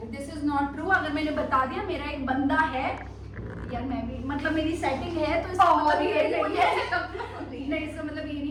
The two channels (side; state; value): both; identical; correlation 1.00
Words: this is not true. अगर मैंने बता दिया मेरा एक बंदा है यार, मैं भी मतलब मेरी सेटिंग है तो इसका मतलब ये नहीं है। नहीं, इसका मतलब ये